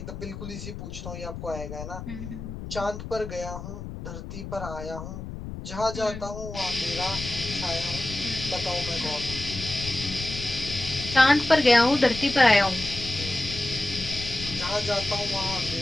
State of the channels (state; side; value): noise; left; rumble, 9 dB below the sound